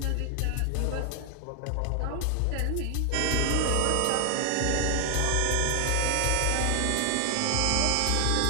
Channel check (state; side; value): different; both; correlation 0.00